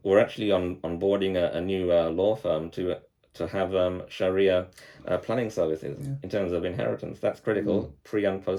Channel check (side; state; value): both; identical; correlation 1.00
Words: We're actually onboarding a new law firm to have Sharia planning services in terms of inheritance. That's critical pre and